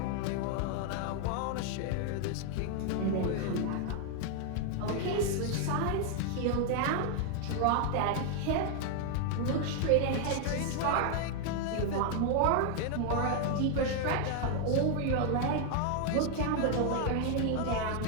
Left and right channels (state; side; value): different; both; correlation 0.00